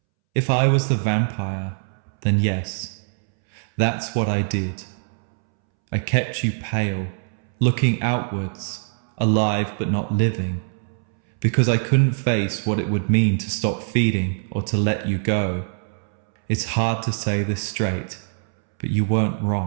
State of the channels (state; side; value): silent; left; 64 dB below the other